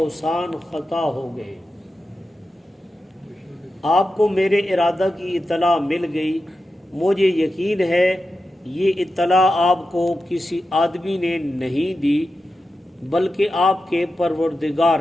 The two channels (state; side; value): normal; both; correlation 0.91